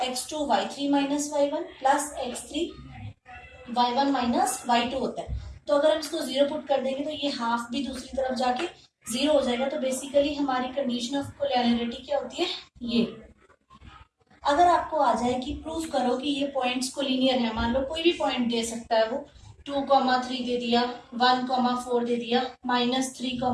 x2 y3 minus y1 plus x3 y1 minus y2 होता है। तो अगर हम इसको 0 पुट कर देंगे तो ये हाफ भी दूसरी तरफ जाके 0 हो जाएगा। तो बेसिकली हमारी कंडीशन ऑफ कोलिनियरिटी क्या होती है ये। अगर आपको आ जाए कि प्रूव करो कि ये पॉइंट्स कोलिनियर है, मान लो कोई भी पॉइंट दे सकता है, वो 2,3 दे दिया, 1,4 दे दिया,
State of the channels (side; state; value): both; identical; correlation 1.00